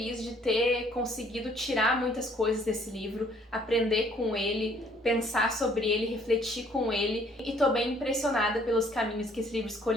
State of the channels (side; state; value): both; normal; correlation 0.61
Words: de ter conseguido tirar muitas coisas desse livro, aprender com ele, pensar sobre ele, refletir com ele. E tô bem impressionada pelos caminhos que esse livro